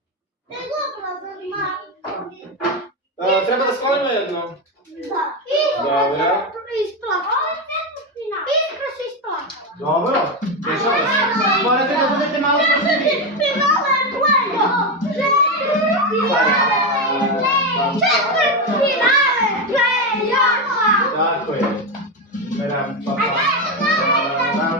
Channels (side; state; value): both; normal; correlation 0.11